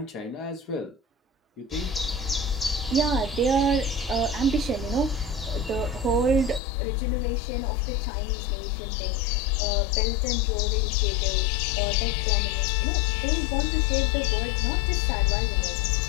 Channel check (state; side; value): drops out; right; at 6.6 s